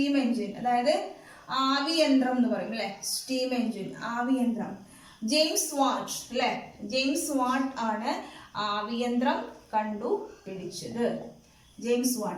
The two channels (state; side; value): identical; both; correlation 1.00